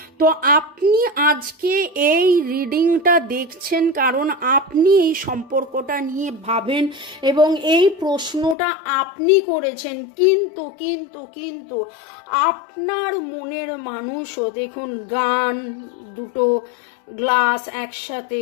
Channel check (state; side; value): drops out; right; at 8.6 s